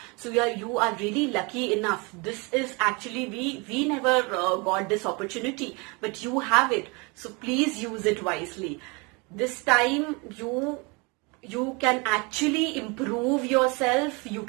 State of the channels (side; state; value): left; quieter; 29.0 dB